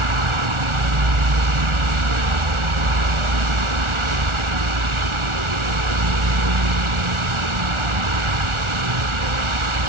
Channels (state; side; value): late; left; 1.4 ms